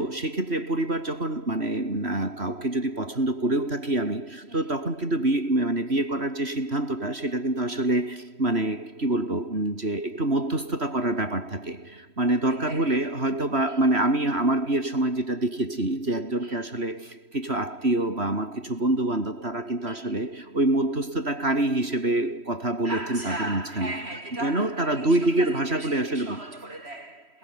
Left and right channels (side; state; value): left; late; 3.1 ms